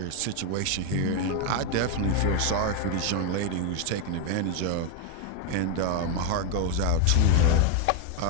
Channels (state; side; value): different; both; correlation 0.01